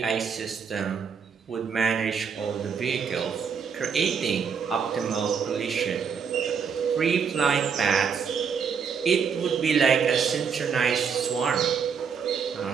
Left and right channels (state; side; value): quieter; left; 6.4 dB